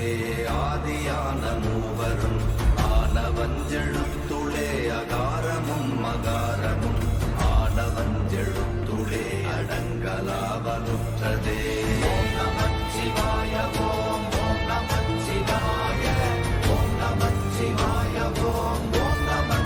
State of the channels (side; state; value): both; identical; correlation 1.00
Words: ஆதியான மூவரும், ஆனவஞ்செழுத்துளே அகாரமும் அகாரமும், ஆனவஞ்செழுத்துளே அடங்கலாவலுற்றதே. ஓம் நமச்சிவாய ஓம் ஓம் நமச்சிவாய ஓம் நமச்சிவாய ஓம் ஓம்